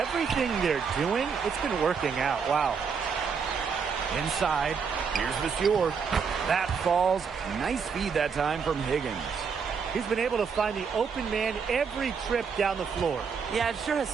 they're doing, it's been working out. Wow. Inside. Here's Vasseur. That falls. Nice feed that time from Higgins. He's been able to find the open man every trip down the floor. Yeah, it sure has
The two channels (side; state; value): left; quieter; 6.0 dB